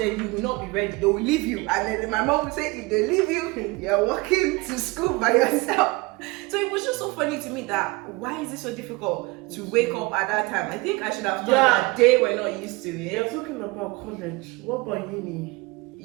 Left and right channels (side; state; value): left; quieter; 24.0 dB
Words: you will not be ready. They will leave you. And then my mom will say, if they leave you, you're walking to school by yourself. So it was just so funny to me that why is it so difficult to wake up at that time? I think I should have thought that they were not used to it. You're talking about college. What about uni?